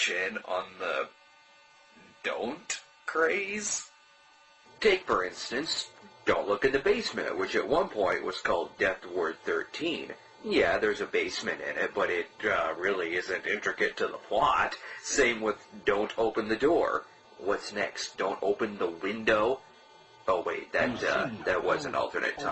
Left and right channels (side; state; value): both; identical; correlation 1.00